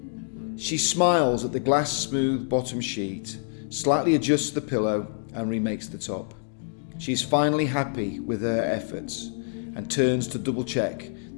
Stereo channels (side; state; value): right; silent; digital silence